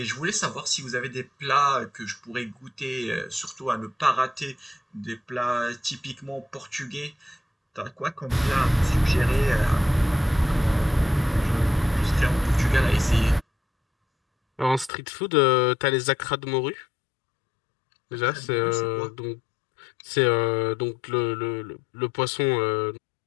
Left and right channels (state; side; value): drops out; right; at 14.9 s